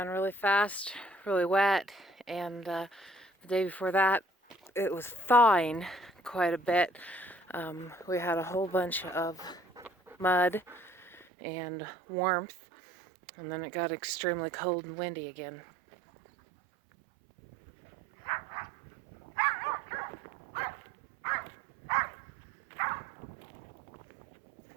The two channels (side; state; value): left; drops out; at 11.2 s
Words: really fast, really wet, and the day before that it was thawing quite a bit. We had a whole bunch of mud and warmth, and then it got extremely cold and windy again.